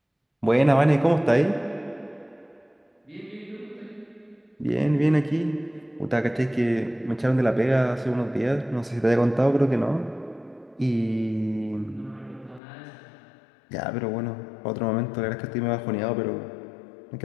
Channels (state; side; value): drops out; right; at 12.6 s